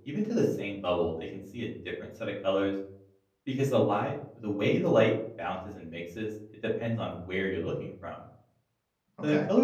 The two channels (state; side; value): identical; both; correlation 1.00